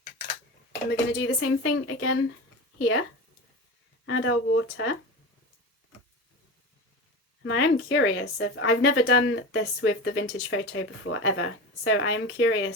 And we're going to do the same thing again here. Add our water. And I am curious if I've never done this with the vintage photo before ever, so I am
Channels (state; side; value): normal; both; correlation 0.27